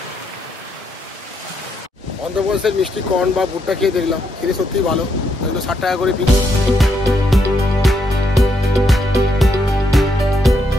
অন্ধ্রপ্রদেশের মিষ্টি কর্ন বা ভুট্টা খেয়ে দেখলাম, খেতে সত্যিই ভালো। 60 টাকা করে পিস।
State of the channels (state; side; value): normal; both; correlation 0.77